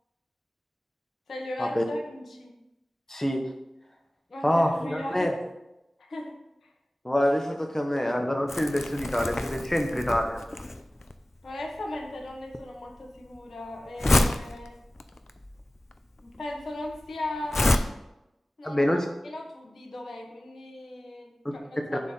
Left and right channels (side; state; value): both; normal; correlation 0.97